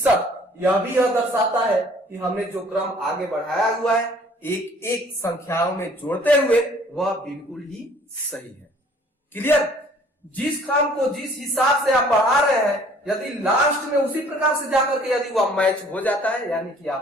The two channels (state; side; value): normal; both; correlation 0.55